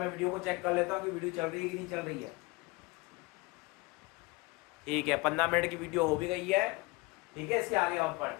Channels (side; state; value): right; quieter; 25.0 dB